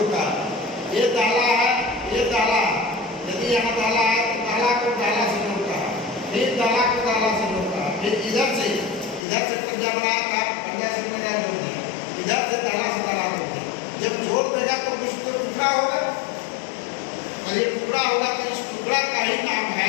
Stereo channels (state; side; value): drops out; right; at 9.2 s